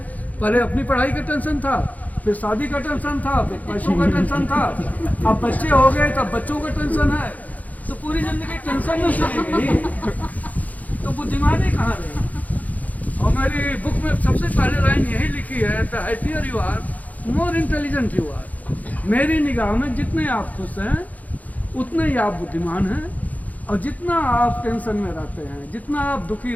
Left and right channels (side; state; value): right; late; 0.076 ms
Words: पहले अपनी पढ़ाई का टेंशन था, फिर शादी का टेंशन था, फिर पैसों का टेंशन था, अब बच्चे हो गए तब बच्चों का टेंशन है। तो पूरी जिंदगी टेंशन में चली गई, तो बुद्धिमानी कहाँ रही? और मेरी बुक में सबसे पहले लाइन यही लिखी है, the happier you are, more intelligent you are. मेरी निगाह में जितने आप खुश हैं उतने ही आप बुद्धिमान हैं, और जितना आप टेंशन में रहते हैं, जितना आप दुखी